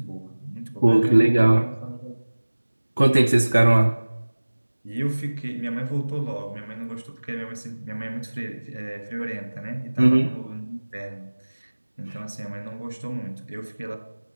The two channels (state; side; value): inverted; both; correlation -1.00